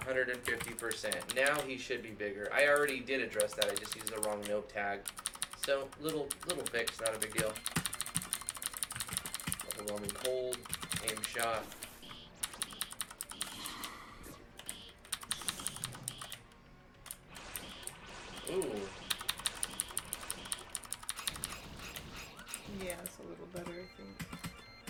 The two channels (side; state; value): both; identical; correlation 1.00